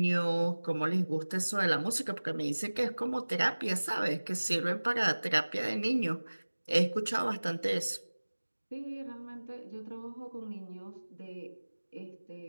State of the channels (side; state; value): both; inverted; correlation -1.00